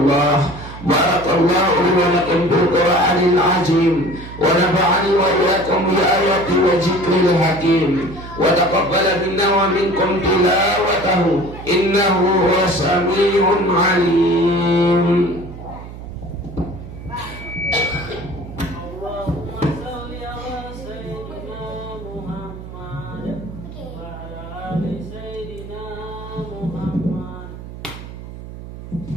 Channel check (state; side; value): noise; right; hum, 13 dB below the sound